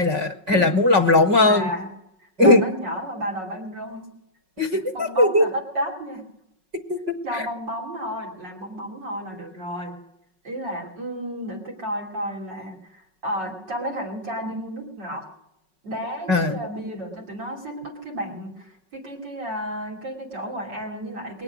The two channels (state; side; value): late; left; 5.4 ms